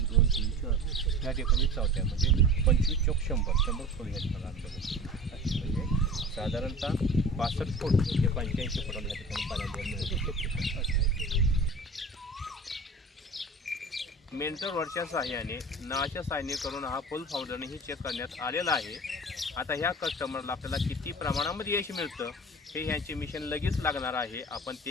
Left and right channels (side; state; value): both; normal; correlation 0.38